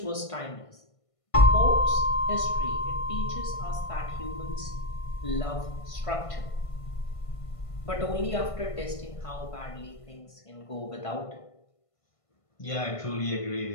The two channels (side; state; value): right; late; 1.5 ms